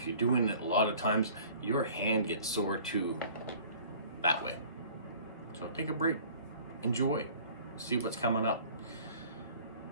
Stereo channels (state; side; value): inverted; both; correlation -0.49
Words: you're doing it a lot of times, your hand gets sore too that way. So take a break, enjoy, see what's coming up.